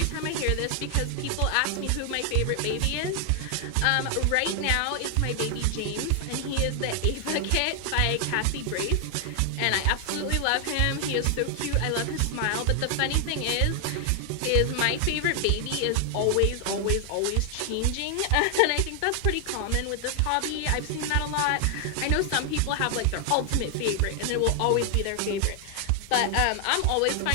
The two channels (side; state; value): both; different; correlation 0.00